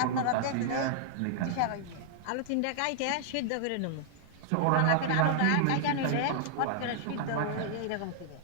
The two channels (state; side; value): different; both; correlation -0.01